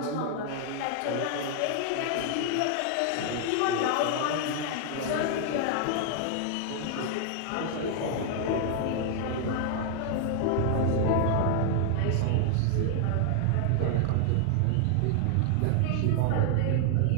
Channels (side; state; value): both; different; correlation 0.00